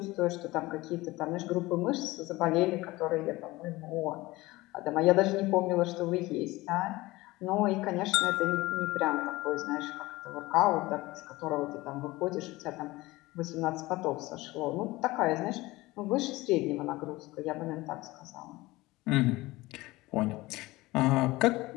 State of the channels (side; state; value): right; quieter; 20.0 dB